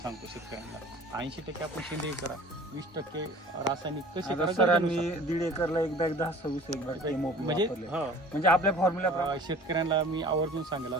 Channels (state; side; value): normal; both; correlation 0.46